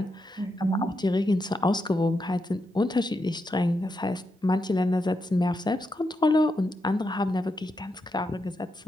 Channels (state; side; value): normal; both; correlation 0.84